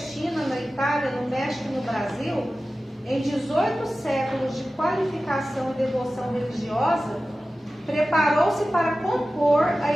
na Itália, no México e no Brasil, em 18 séculos de qualificação e devoção religiosa, preparou-se para compor a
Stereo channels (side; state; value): both; normal; correlation 0.95